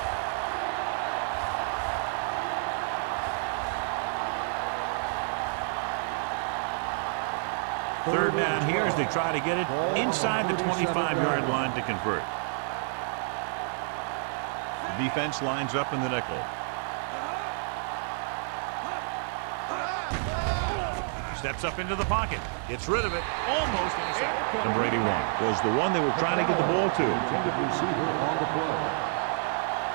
Third down here as they try to get it inside the 25-yard line to convert. The defense lines up in the nickel. Steps up into the pocket. Gets rid of it. Almost intercepted. Number 81 was the one they were trying to get the ball to. Intended receiver on the play.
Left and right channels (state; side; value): silent; left; 58 dB below the other